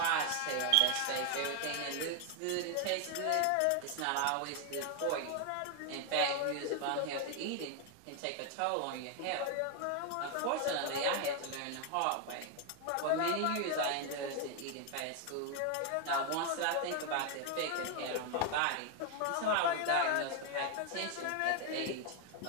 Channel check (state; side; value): different; both; correlation 0.01